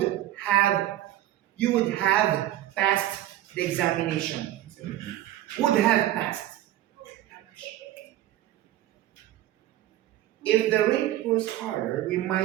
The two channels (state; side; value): quieter; left; 13.8 dB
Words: have passed the examination. Would have passed. If the rate was harder, we